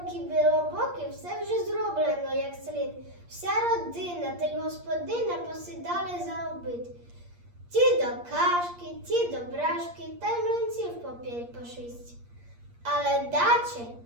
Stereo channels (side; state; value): left; late; 8.5 ms